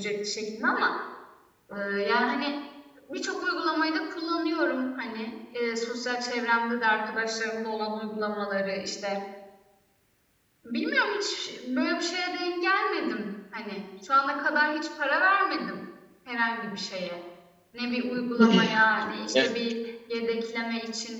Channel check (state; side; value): identical; both; correlation 1.00